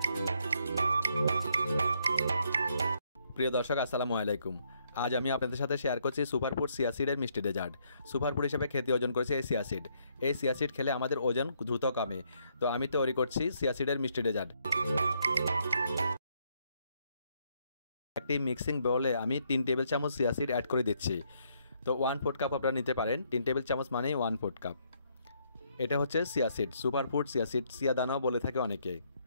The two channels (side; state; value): both; inverted; correlation -0.73